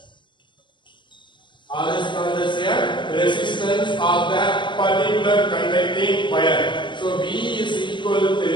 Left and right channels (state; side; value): late; right; 0.23 ms